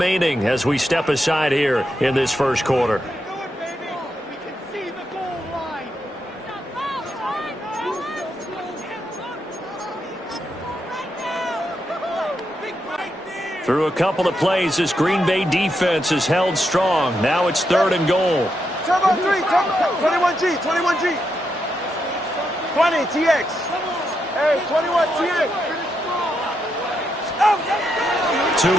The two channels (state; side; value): normal; both; correlation 0.82